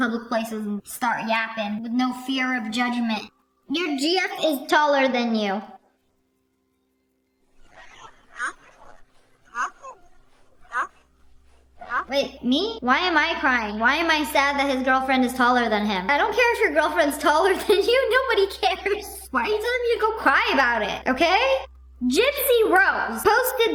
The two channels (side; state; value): both; identical; correlation 1.00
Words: places and start yapping with no fear of judgment. Your GF is taller than you. Wait, me? Why am I crying? Why am I sad that his girlfriend is taller than him? I don't care if your girlfriend's taller than you. Nobody cares. Why are you telling me to go cry about it, okay? Gypsy Rose